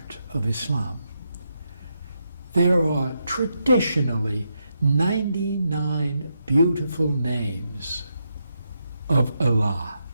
of Islam. There are traditionally 99 beautiful names of Allah.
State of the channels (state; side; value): inverted; both; correlation -0.83